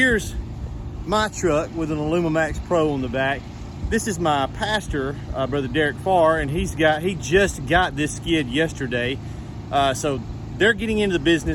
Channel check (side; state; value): both; identical; correlation 1.00